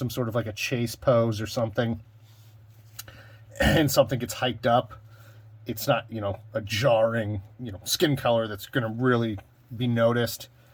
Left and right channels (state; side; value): identical; both; correlation 1.00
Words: sort of like a chase pose or something, and something gets hiked up, it's not, you know, a jarring, you know, skin color that's going to really be noticed.